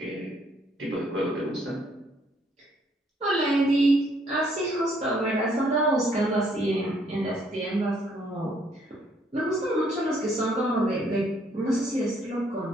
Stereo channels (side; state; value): both; normal; correlation 0.67